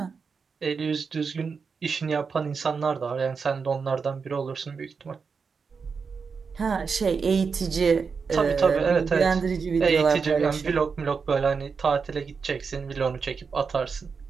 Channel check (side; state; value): left; quieter; 5.4 dB